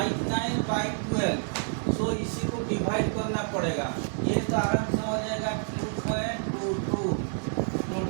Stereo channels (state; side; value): silent; left; 59 dB below the other